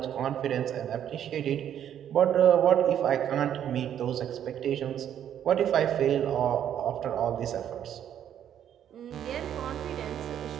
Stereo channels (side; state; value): left; quieter; 9.9 dB